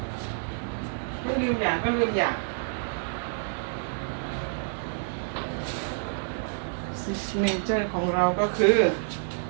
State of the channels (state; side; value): silent; left; 59 dB below the other